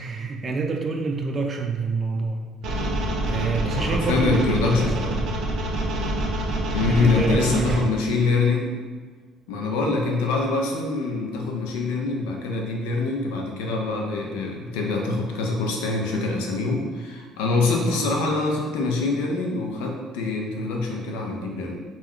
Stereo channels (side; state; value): both; normal; correlation 0.57